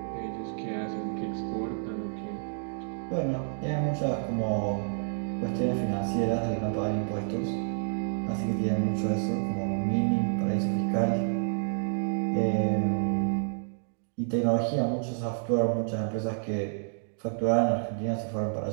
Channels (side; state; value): left; silent; digital silence